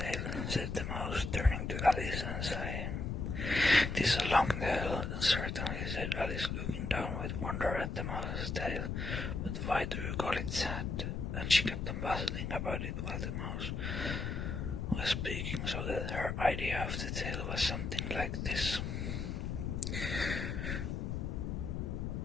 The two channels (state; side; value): noise; left; rumble, 2 dB below the sound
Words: said the mouse, turning to Alice and sighing. "It is a long tale, certainly," said Alice, looking down with wonder at the mouse's tail. "But why do you call it sad?" And she kept on puzzling about it while the mouse was speaking, so that her idea of the tale was something like this.